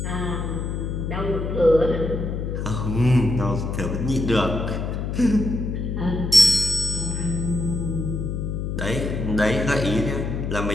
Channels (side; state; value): left; noise; hum, 3 dB below the sound